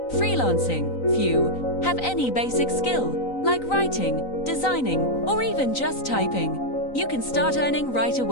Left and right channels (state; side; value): late; right; 3.9 ms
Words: freelancing. Few have any basic skill, like writing, designing, or even just typing. You can start earning right